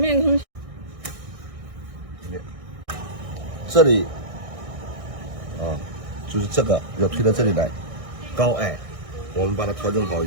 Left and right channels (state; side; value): late; left; 1.6 ms